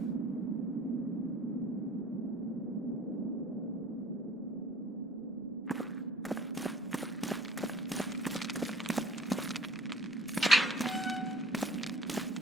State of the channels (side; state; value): both; normal; correlation 0.51